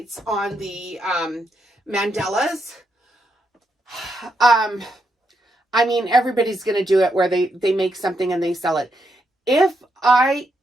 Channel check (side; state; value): both; normal; correlation 0.80